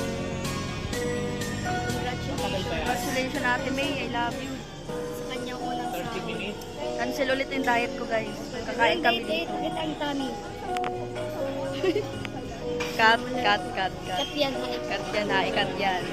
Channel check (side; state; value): both; identical; correlation 1.00